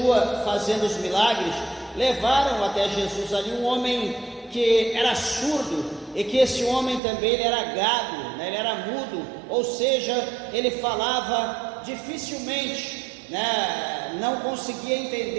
fazendo os milagres. Levaram até Jesus ali um homem que era surdo, e que esse homem também ele era gago, ele era mudo, ou seja, ele falava dificilmente, não conseguia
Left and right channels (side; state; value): left; drops out; at 7.0 s